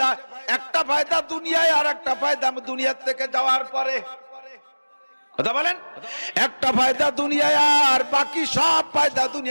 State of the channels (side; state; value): both; inverted; correlation -1.00